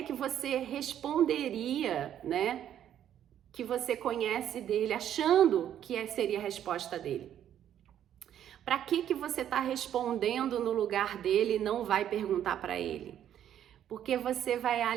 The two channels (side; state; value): left; quieter; 10.4 dB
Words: que você responderia, né? Que você conhece dele, achando que seria a resposta dele? Para que você está respondendo no lugar dele e não vai perguntar para ele? Porque você vai